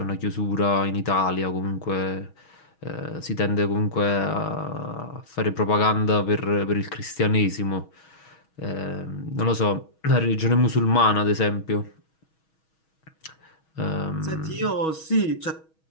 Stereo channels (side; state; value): right; late; 6.3 ms